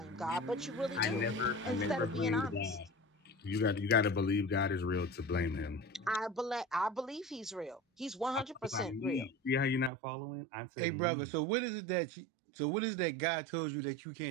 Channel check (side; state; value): left; drops out; at 9.9 s